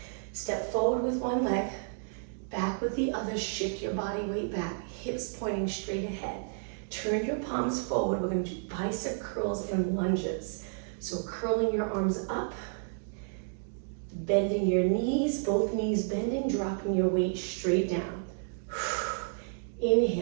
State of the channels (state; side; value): silent; left; digital silence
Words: Step forward with one leg, back with the other. Shift your body weight back, hips pointing straight ahead. Turn your palms forward. We're going to do bicep curls and lunges. So curling your arms up, bending your knees, both knees bending, dropping your weight straight down.